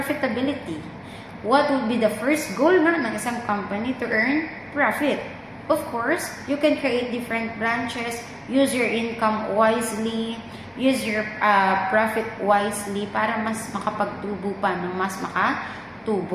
What would be the first goal nga ng isang company to earn profit? Of course, you can create different branches, use your income wisely, use your profit wisely para mas makapagtubo pa ng mas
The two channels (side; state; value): both; identical; correlation 1.00